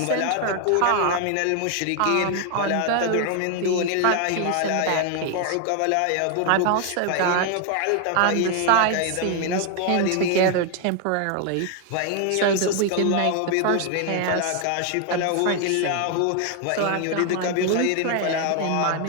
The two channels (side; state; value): both; different; correlation 0.00